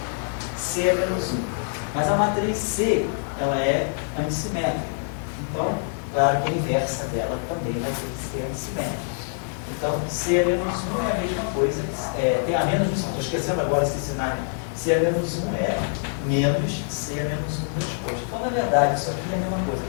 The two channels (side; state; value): right; silent; digital silence